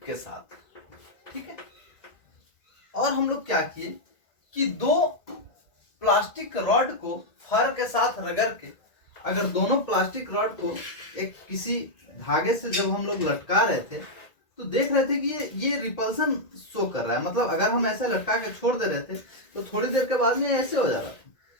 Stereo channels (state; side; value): late; right; 1.9 ms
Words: के साथ, ठीक है। और हम लोग क्या किए कि दो प्लास्टिक रॉड को फर के साथ रगड़ के, अगर दोनों प्लास्टिक रॉड को एक किसी धागे से जब हम लोग लटका रहे थे तो देख रहे थे कि ये रिपल्सन शो कर रहा है। मतलब अगर हम ऐसे लटका के छोड़ दे रहे थे तो थोड़ी देर के बाद में ऐसे हो जा रहा था।